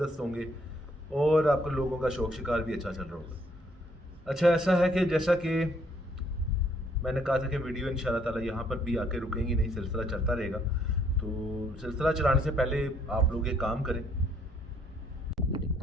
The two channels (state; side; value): normal; both; correlation 0.67